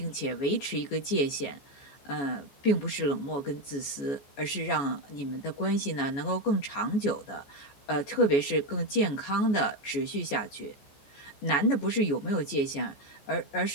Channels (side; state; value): right; late; 14 ms